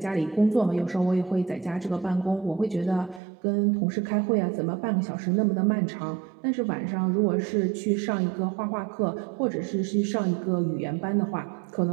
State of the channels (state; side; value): drops out; left; at 3.2 s